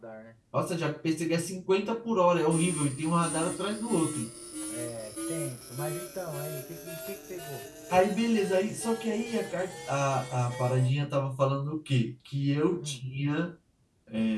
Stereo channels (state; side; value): identical; both; correlation 1.00